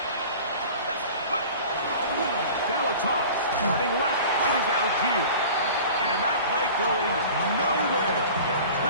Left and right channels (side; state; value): both; inverted; correlation -0.41